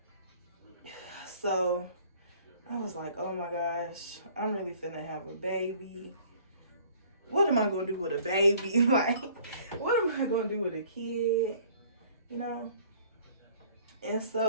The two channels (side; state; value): both; inverted; correlation -0.54